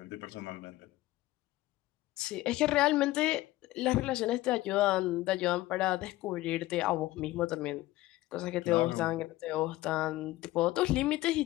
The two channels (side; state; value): right; quieter; 17.2 dB